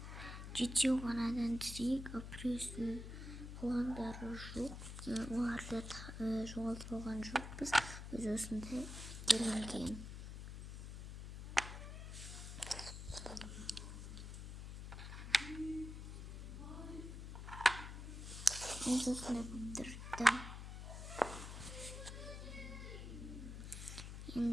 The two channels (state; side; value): noise; left; hum, 8 dB below the sound